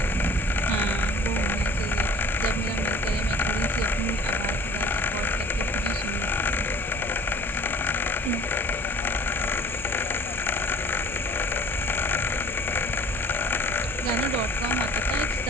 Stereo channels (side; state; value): both; normal; correlation 0.48